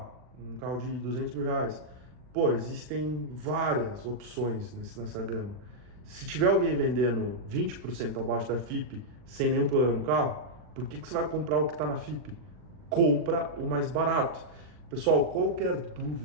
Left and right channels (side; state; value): left; late; 39 ms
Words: carro de 200 mil reais. Pô, existem várias opções nessa gama. Se tiver alguém vendendo 20% abaixo da FIP sem nenhum problema no carro, por que você vai comprar o que está na FIP? Compra o mais barato. Pessoal, qualquer